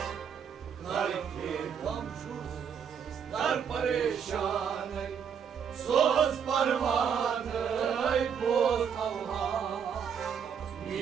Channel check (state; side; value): quieter; left; 7.4 dB